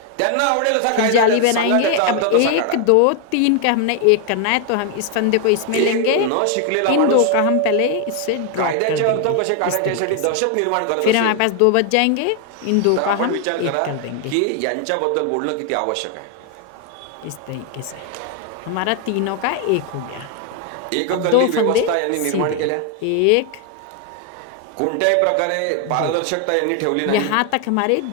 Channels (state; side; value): different; both; correlation 0.00